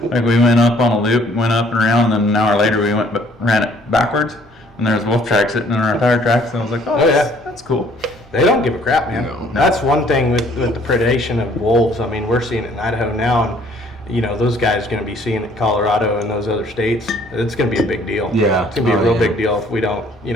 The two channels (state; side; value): normal; both; correlation 0.60